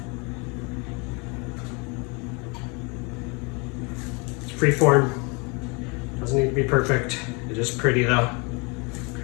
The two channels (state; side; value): quieter; right; 30.8 dB